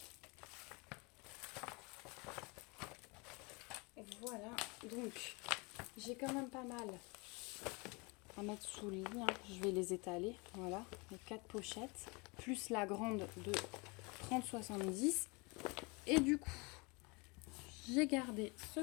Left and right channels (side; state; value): right; quieter; 28.7 dB